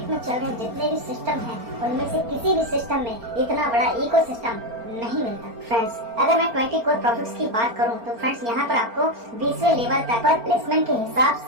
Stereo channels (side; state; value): left; late; 4.4 ms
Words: में चल रहे जितने भी सिस्टम हैं उनमें से किसी भी सिस्टम में इतना बड़ा इकोसिस्टम नहीं मिलता। फ्रेंड्स अगर मैं 20 कोर प्रॉफिट्स की बात करूं तो फ्रेंड्स यहाँ पर आपको 20वें लेवल तक पर प्लेसमेंट के हिसाब